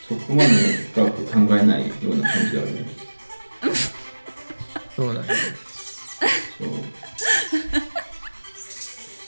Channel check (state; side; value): inverted; both; correlation -1.00